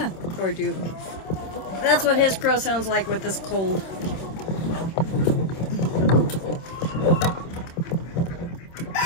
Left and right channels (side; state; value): right; late; 26 ms